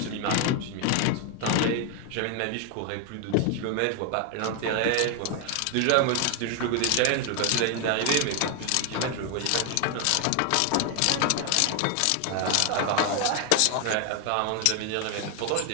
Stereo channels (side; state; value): both; different; correlation 0.00